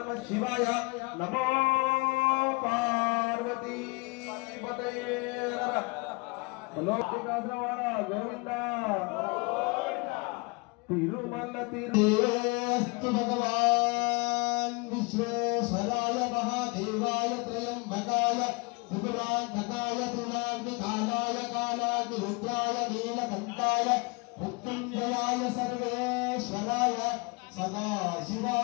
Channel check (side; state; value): right; quieter; 29.0 dB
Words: नमो पार्वती पतये गोविंदा तिरुमल तिरुस्तु भगवान विश्वेश्वराय महादेवाय त्रयंबकाय त्रिपुरांतकाय त्रिनाग्निकालाय कालाग्निरुद्राय नीलकंठाय मृत्युंजयाय सर्वेश्वराय